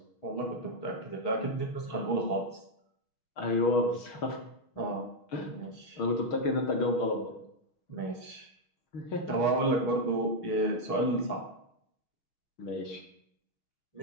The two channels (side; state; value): right; late; 6.4 ms